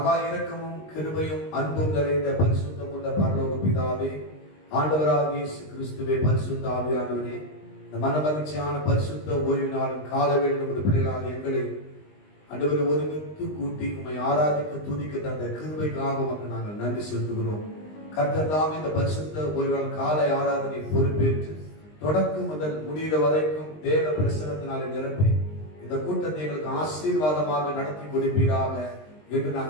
இரக்கமும் கிருபையும் அன்பும் நிறைந்த பரிசுத்தமுள்ள பரலோக பிதாவே, ஆண்டவராகிய இயேசு கிறிஸ்துவே, பரிசுத்த ஆவியானவரே, இந்த மனமகிழ்ச்சியான பரிசுத்த ஓய்வு நாளின் கால வேண்டும் பிள்ளைகளாக எங்களை ஆண்டவரை ஒருமித்து கூட்டி உம்மை ஆராதிக்க துதிக்க தந்த கிருபைக்காக உமக்கு நாங்கள் நன்றி செலுத்துகிறோம். கர்த்தர் தாம் இந்த பரிசுத்த ஓய்வு நாள் காலை ஆராதனை பொறுப்பேற்று தொடக்கம் முதல் முடிகிற வரைக்கும் தேவ பிரசனத்தினாலே நிரப்பி இந்த கூட்டத்தை எங்களுக்கு ஆசீர்வாதமாக நடத்தி கொடுப்பீராக என்று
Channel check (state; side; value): late; right; 20 ms